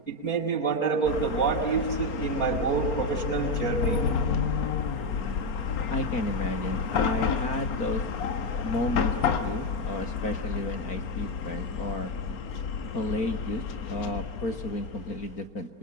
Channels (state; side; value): late; right; 4.4 ms